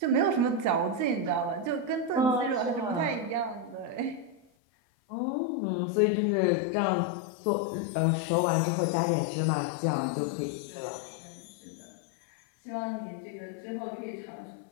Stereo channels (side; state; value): right; drops out; at 4.4 s